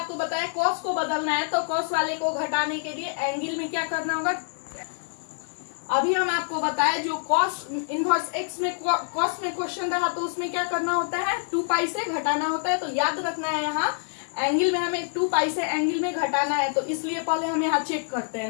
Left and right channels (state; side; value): silent; right; digital silence